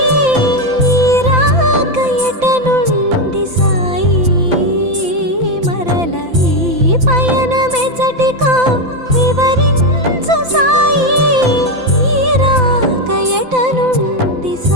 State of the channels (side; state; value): left; late; 5.9 ms